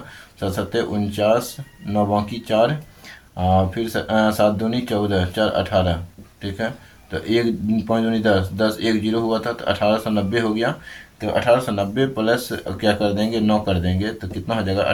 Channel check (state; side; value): identical; both; correlation 1.00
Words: 7 7 49, 9 बाकी 4, फिर 7 दूनी 14, 4 18, ठीक है। तो 1 5 दूनी 10, 10 1 0 हुआ था तो 1890 हो गया। तो 1890 प्लस क्या कर देंगे, 9 कर देंगे तो कितना हो जाएगा,